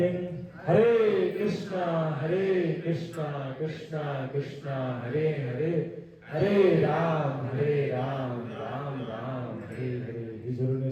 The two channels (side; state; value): both; identical; correlation 1.00